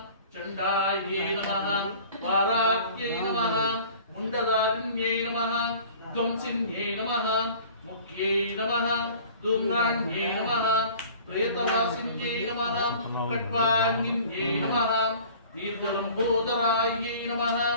चण्डायै नमः वाराक्यै नमः मुण्डदारिण्यै नमः ध्वंसिन्यै नमः मुख्यै नमः धूम्राण्यै नमः प्रेतवासिन्यै नमः कट्वाङ्गिन्यै नमः दीर्घलम्बोदरायै नमः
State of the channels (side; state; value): both; inverted; correlation -0.47